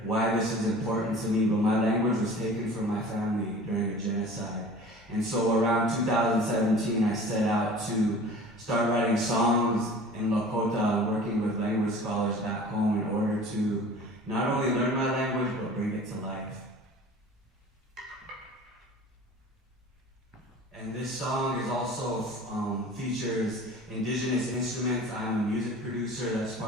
why this is important to me, but my language was taken from my family during a genocide. And so around 2017, I set out to start writing songs in Lakota, working with language scholars back home in order to not only learn my language, but bring it to life. And this song is also features indigenous instruments. I'm a music producer. That's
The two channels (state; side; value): normal; both; correlation 0.43